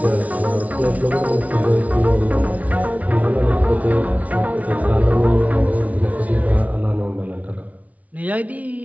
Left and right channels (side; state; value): left; late; 0.069 ms